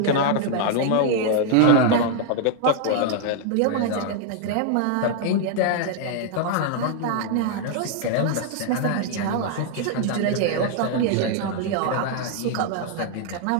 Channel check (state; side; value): different; both; correlation 0.00